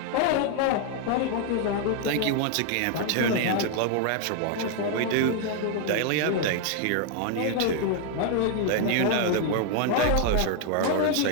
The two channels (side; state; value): both; different; correlation 0.00